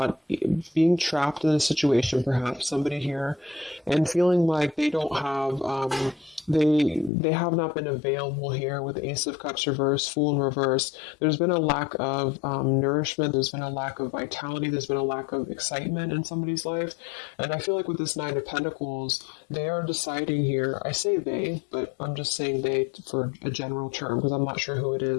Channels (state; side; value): drops out; right; at 7.1 s